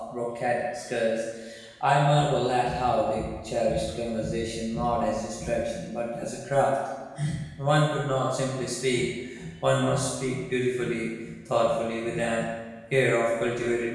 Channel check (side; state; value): both; identical; correlation 1.00